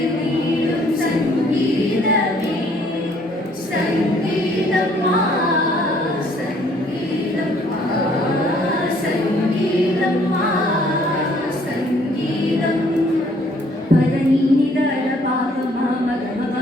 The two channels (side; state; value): both; normal; correlation 0.62